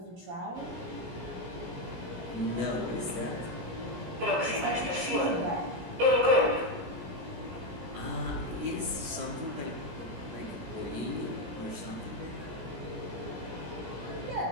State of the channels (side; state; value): left; late; 17 ms